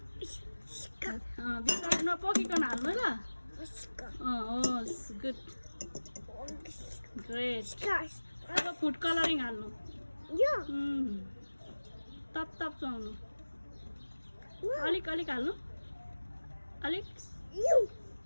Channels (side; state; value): both; inverted; correlation -1.00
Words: भित्र नपोकिकन हाल्नु ल गुड ग्रेट अब फुड कलरिङ हाल्नु तप तप चुहाउनु अलिक अलिक हाल्नु अलिक